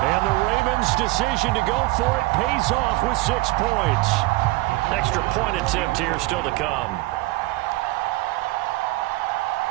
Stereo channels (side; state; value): left; quieter; 21.2 dB